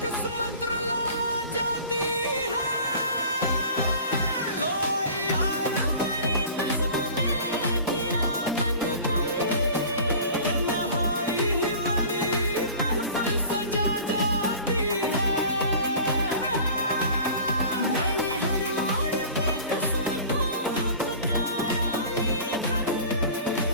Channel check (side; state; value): both; inverted; correlation -0.42